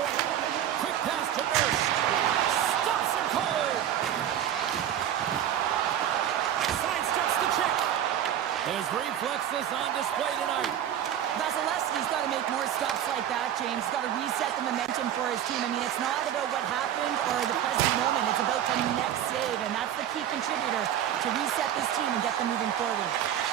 Quick pass to Nurse. Stops him cold. Sidesteps the check. His reflexes on display tonight. That's Vasilevsky's got to make more stops like that, James. He's got to reset the momentum for his team. I mean, it's not about what happened or the present moment. It's about the next save, and that's the key contributor to reset this team and get them moving forward.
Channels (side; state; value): left; quieter; 10.6 dB